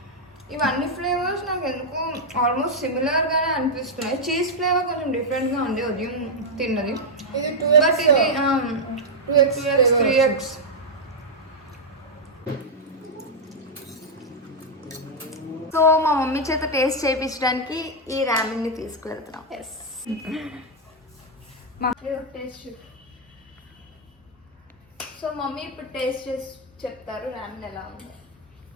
ఇవన్నీ ఫ్లేవర్స్ నాకు ఎందుకు ఆల్మోస్ట్ సిమిలర్గానే అనిపిస్తున్నాయి. చీజ్ ఫ్లేవర్ కొంచెం డిఫరెంట్గా ఉంది ఉదయం తిన్నది. ఇది బట్ ఇది 2x 3x. సో మా మమ్మీ చేత టేస్ట్ చేయించడానికి ఈ రామెన్ని తీసుకువెళ్తున్నాం. Yes, taste. సో మమ్మీ ఇప్పుడు టేస్ట్ చేసి చెప్తారు రామెన్ ఎలా ఉంది.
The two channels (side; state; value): both; normal; correlation -0.02